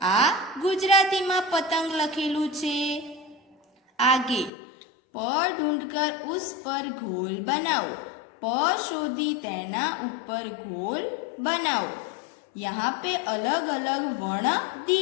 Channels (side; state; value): right; drops out; at 4.5 s